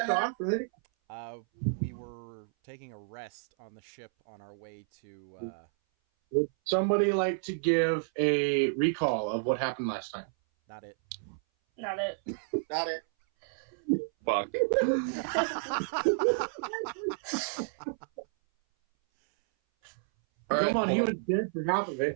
off, right? We were taking a rest on the ship on our way to... Would somebody like to give a recall of what happened last time? Not it. Not it. Got it. Fuck. Come on, he was dead for half of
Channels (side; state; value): left; silent; 57 dB below the other